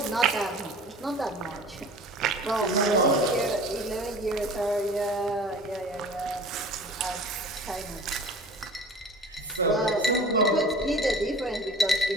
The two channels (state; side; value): normal; both; correlation 0.41